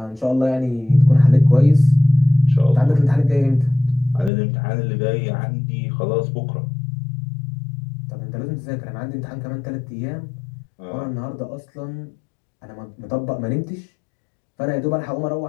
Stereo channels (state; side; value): drops out; right; at 4.3 s